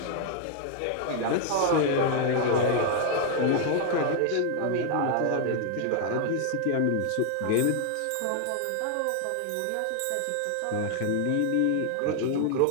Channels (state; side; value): different; both; correlation 0.00